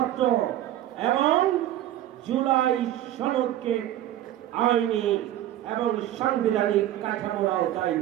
এবং জুলাই সনদকে আইনি এবং সাংবিধানিক কাঠামোর আওতায়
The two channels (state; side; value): quieter; left; 12.9 dB